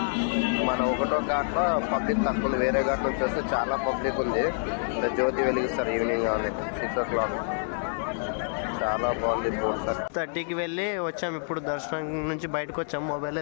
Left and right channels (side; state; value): right; silent; digital silence